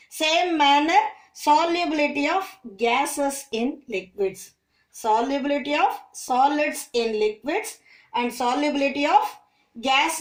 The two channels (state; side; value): identical; both; correlation 1.00